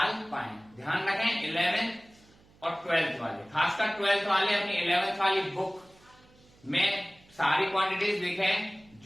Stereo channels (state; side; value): noise; right; hum, 29 dB below the sound